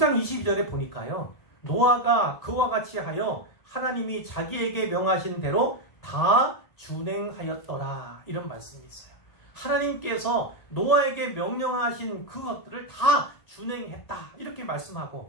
22절에 보니까요, 노아가 그와 같이 하여 하나님이 자기에게 명하신 대로 다 준행하였더라. 이런 말씀이 있어요. 하나님께서 노아에게 명령하신 그것들을 다 준행했다. 이렇게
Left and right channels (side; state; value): right; late; 1.9 ms